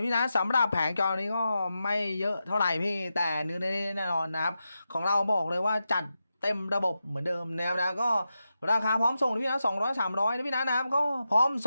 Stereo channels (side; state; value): both; inverted; correlation -0.90